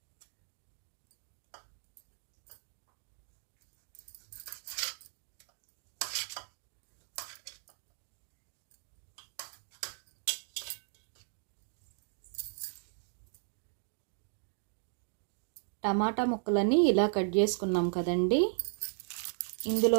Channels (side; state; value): left; silent; digital silence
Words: టమాటా ముక్కలన్నీ ఇలా కట్ చేసుకున్నాం కదండి.